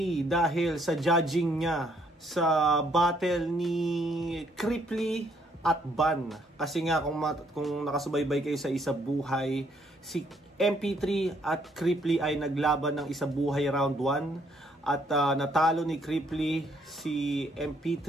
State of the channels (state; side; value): normal; both; correlation 0.68